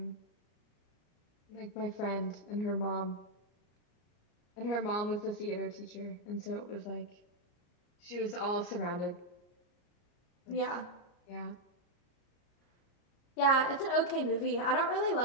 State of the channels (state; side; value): late; right; 33 ms